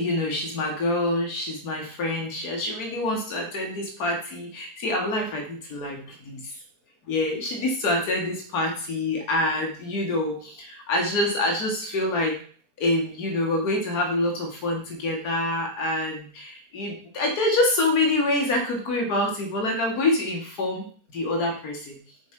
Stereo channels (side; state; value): right; late; 4.4 ms